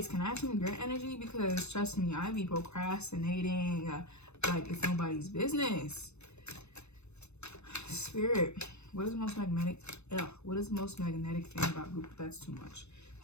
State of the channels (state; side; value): late; right; 0.81 ms